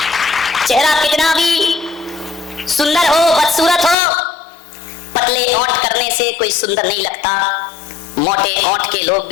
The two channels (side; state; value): right; drops out; at 4.0 s